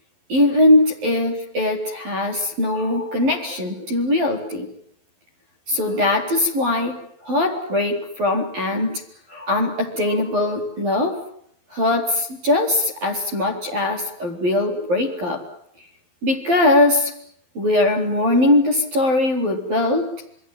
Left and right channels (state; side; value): late; left; 12 ms